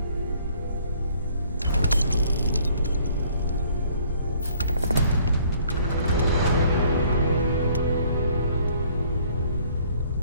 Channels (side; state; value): both; inverted; correlation -0.60